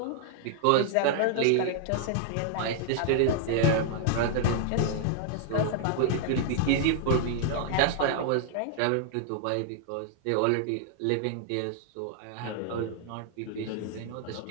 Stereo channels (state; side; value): different; both; correlation -0.01